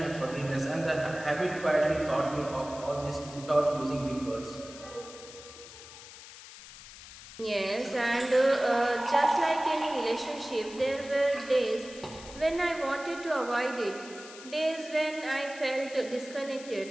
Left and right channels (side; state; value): left; noise; hiss, 16 dB below the sound